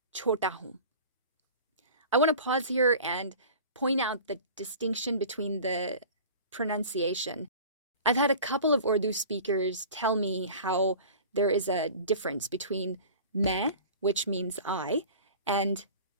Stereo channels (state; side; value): inverted; both; correlation -0.40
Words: छोटा हूँ. I want to pause here and point out the distinction between the pronunciation. I've had a couple of Urdu speakers tell me how there is a difference between मैं, which means I, and